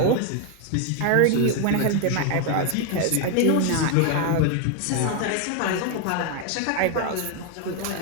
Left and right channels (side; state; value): both; different; correlation 0.01